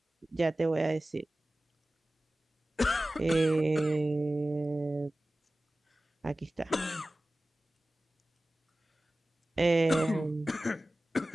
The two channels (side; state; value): both; normal; correlation 0.96